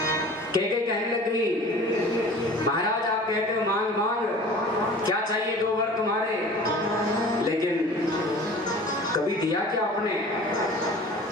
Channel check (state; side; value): normal; both; correlation 0.43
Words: कैकेयी कहने लग गई महाराज आप कहते हो मांग मांग, क्या चाहिए दो वर तुम्हारे, लेकिन कभी दिया क्या आपने,